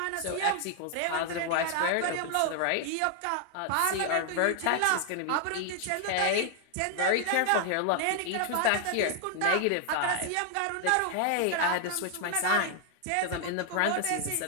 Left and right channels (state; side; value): different; both; correlation 0.00